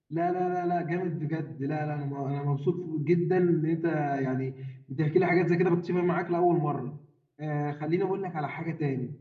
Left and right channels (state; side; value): identical; both; correlation 1.00